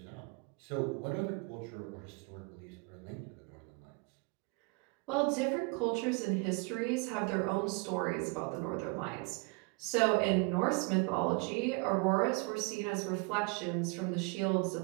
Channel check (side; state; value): left; quieter; 29.2 dB